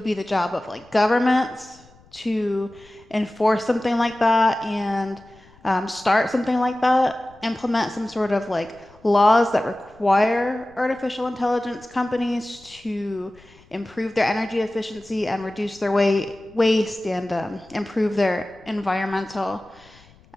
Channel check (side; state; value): left; noise; rumble, 28 dB below the sound